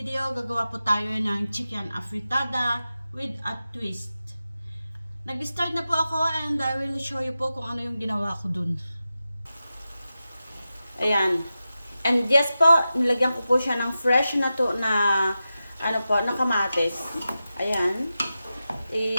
gagawa po tayo ng chicken afritada with a twist. Nag-start na po ako and I will show you po kung ano yung ginawa ko dun. Ayan. And yes po, nilagyan ko po siya ng fresh na to na na kamatis. Ayan.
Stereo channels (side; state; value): both; inverted; correlation -0.92